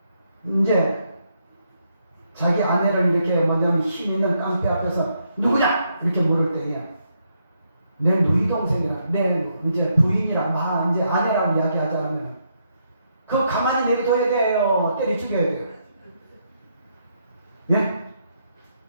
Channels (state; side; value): inverted; both; correlation -0.77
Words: 이제 자기 아내를 이렇게 뭐냐면 힘 있는 깡패 앞에서 누구냐 이렇게 물을 때에 내 누이 동생이라 내 이제 부인이라 이제 아내라고 이야기하자면 그거 가만히 내려둬야 돼요? 때려 죽여야 돼요? 예?